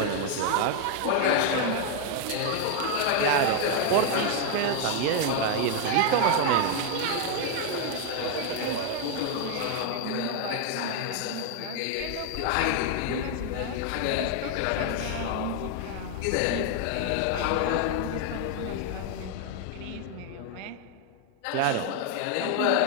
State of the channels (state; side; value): different; both; correlation 0.01